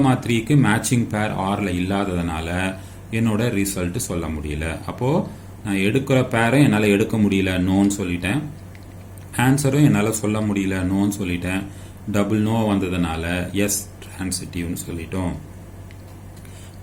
மேட்சிங் பேர் ஆரில் இல்லாததுனால என்னோட ரிசல்ட் சொல்ல முடியல. அப்போது நான் எடுக்கிற பேரை என்னால் எடுக்க முடியல, நோன்னு சொல்லிட்டேன். ஆன்சரும் என்னால் சொல்ல முடியல, நோன்னு சொல்லிட்டேன். டபுள் நோ வந்ததுனால எஸ் டிரான்சிட்டிவ்னு சொல்லிட்டோம்.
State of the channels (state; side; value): identical; both; correlation 1.00